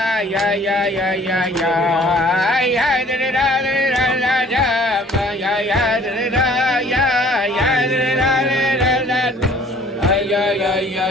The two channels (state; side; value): normal; both; correlation 0.54